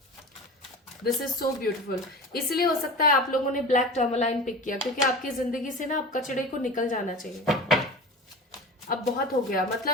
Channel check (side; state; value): both; normal; correlation 0.33